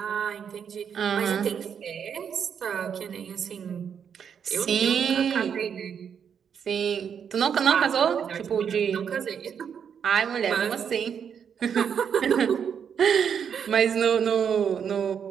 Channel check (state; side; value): quieter; left; 7.6 dB